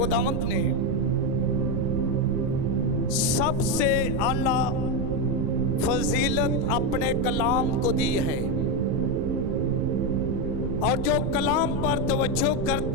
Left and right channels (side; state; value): right; noise; rumble, 3 dB below the sound